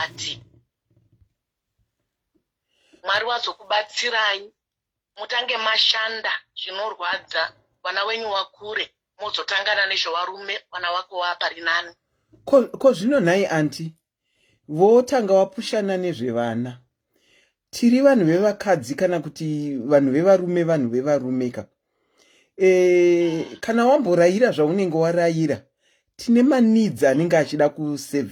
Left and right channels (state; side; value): identical; both; correlation 1.00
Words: Mwari wazokubatsirai mutange mashanda zvinorwadza wana wenyu wakure mozotangana nezvevarume wana wako wapari nani. Ko zvino nhai anti votanga wapushana nezvevana. Tiri vanhu vevakadzi kana kuti vanhu vevarume vanhu vevarumeka. Kana wamborayira zvaunenge warayira tine manidzi anenge achida